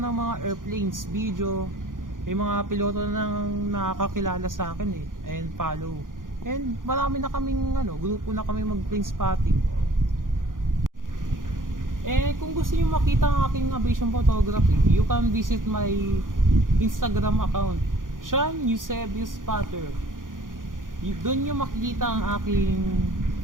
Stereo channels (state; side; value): late; left; 0.89 ms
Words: mga airplanes, video. May mga piloto na nakakakilala sa akin and follow. And marami na kaming grupo na kami mag-plane spotting. Kung gusto niyo makita ang aking aviation photography, you can visit my Instagram account, Sean Eusebio Spotter. Doon niyo makikita ang aking